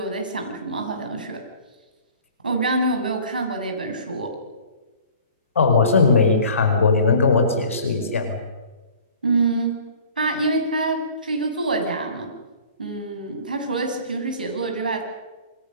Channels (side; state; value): both; inverted; correlation -0.48